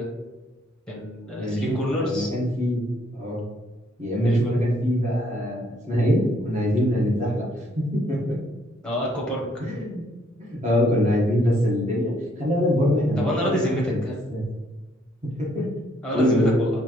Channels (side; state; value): both; normal; correlation 0.68